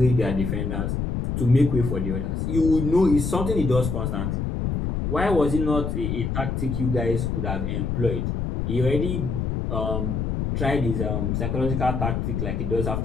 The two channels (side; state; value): left; noise; rumble, 1 dB below the sound